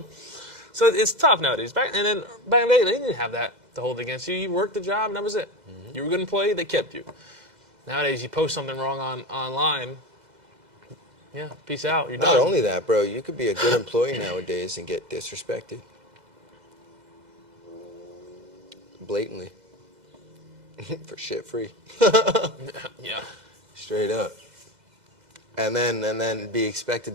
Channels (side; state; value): left; late; 2.0 ms